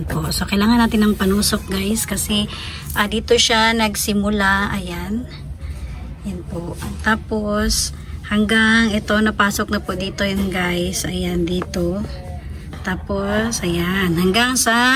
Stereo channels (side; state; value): both; identical; correlation 1.00